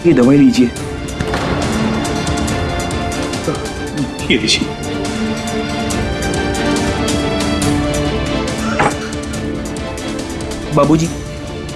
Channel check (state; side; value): identical; both; correlation 1.00